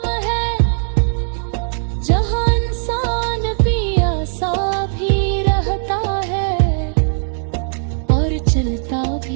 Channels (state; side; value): silent; left; 63 dB below the other